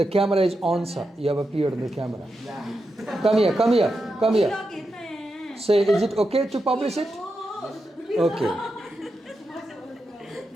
camera is on, sir. You have appeared on the camera. Come here, come here, come here. Say, is it okay to publish it? Okay.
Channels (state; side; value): normal; both; correlation 0.87